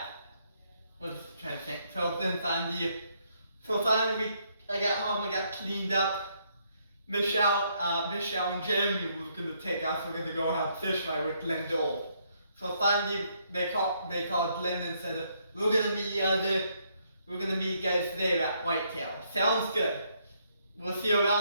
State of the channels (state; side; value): inverted; both; correlation -0.72